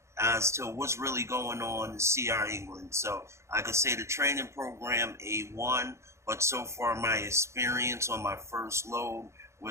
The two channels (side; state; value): left; late; 0.13 ms